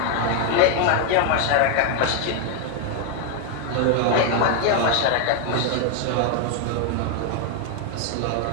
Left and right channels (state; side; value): different; both; correlation 0.01